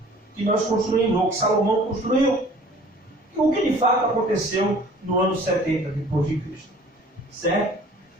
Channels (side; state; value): both; normal; correlation 0.50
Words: que nós construímos, ou que Salomão construiu. O que de fato aconteceu no ano 70 depois de Cristo. Certo?